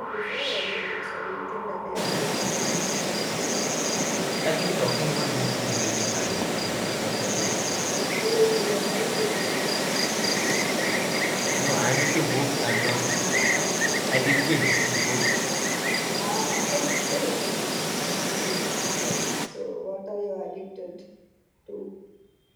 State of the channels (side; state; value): both; identical; correlation 1.00